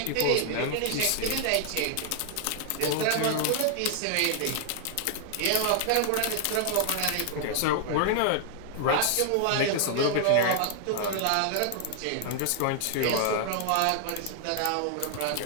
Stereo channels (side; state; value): both; different; correlation 0.00